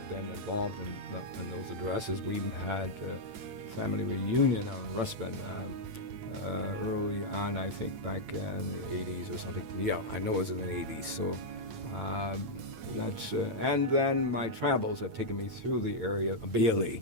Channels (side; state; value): left; late; 8.9 ms